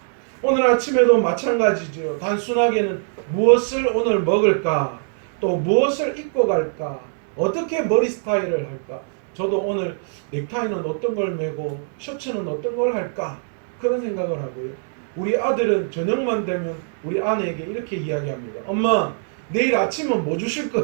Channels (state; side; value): silent; left; digital silence